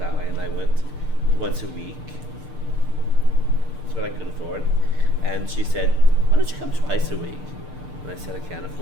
and I went once a week. That's what I could afford. And she said, "Why don't you come twice a week?" And I said, "I can't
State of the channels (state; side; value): late; left; 6.7 ms